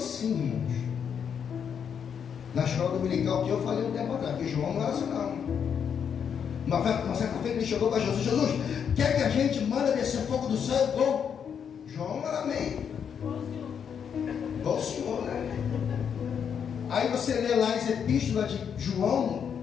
irmãos. Na escola dominical que eu falei um tempo atrás, que João não era assim não. Uma certa feita ele chegou para Jesus: Jesus, quer que a gente manda descer fogo do céu igual? João era meio igual o Senhor, né? Aí você lê lá as epístolas de João,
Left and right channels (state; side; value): quieter; right; 7.6 dB